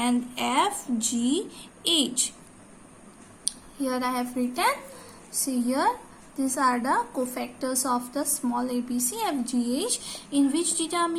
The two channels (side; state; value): both; identical; correlation 1.00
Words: F, G, H. Here I have written, see here, these are the cofactors of the small ABC FGH. In which